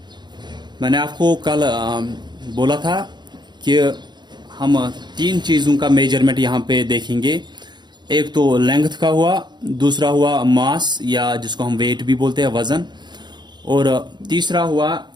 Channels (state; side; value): late; left; 0.21 ms